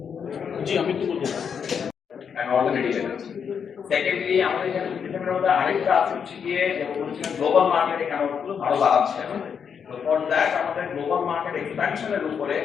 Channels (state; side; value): quieter; right; 7.0 dB